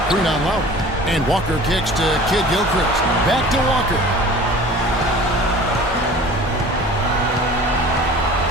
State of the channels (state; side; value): normal; both; correlation 0.43